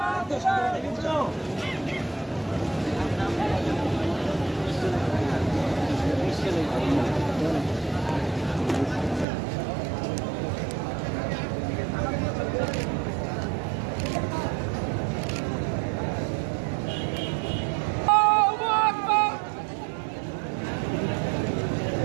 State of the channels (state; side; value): drops out; left; at 9.2 s